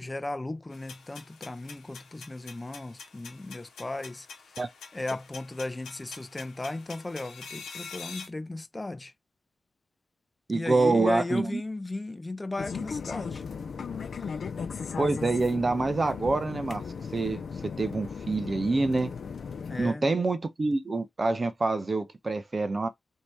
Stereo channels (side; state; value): both; normal; correlation 0.93